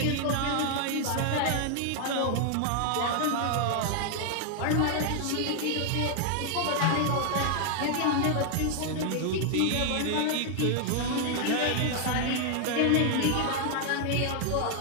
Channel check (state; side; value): different; both; correlation 0.00